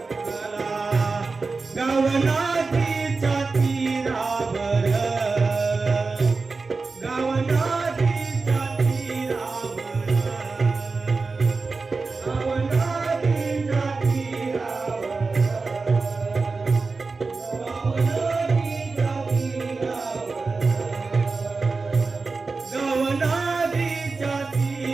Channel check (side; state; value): left; quieter; 4.1 dB